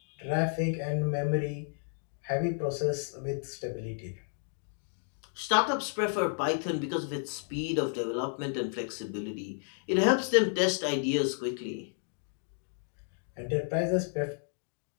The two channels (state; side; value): silent; right; 56 dB below the other